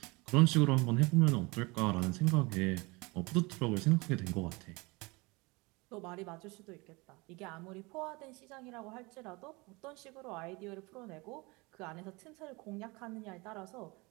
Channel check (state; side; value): quieter; left; 25.6 dB